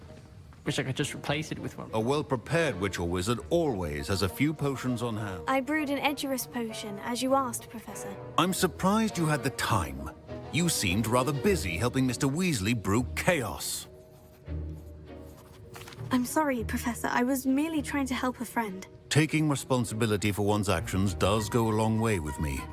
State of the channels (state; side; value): identical; both; correlation 1.00